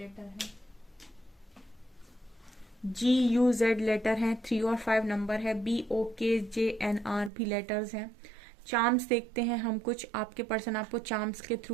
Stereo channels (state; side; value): drops out; left; at 7.3 s